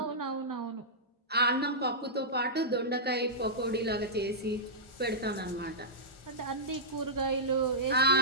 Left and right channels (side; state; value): both; normal; correlation -0.14